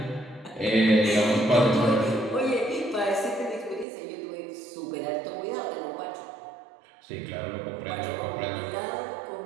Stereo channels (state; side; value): drops out; left; at 3.9 s